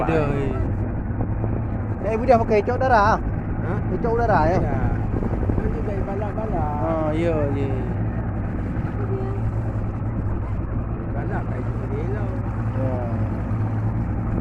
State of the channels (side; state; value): both; identical; correlation 1.00